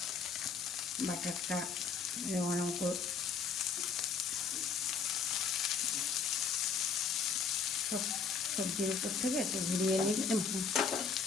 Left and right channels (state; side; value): quieter; right; 5.5 dB